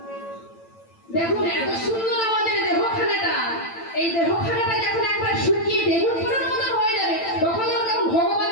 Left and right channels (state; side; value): late; right; 9.0 ms